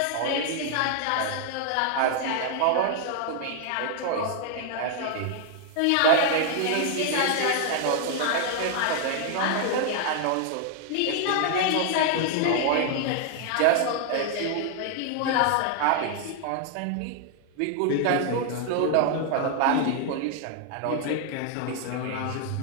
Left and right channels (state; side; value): different; both; correlation 0.00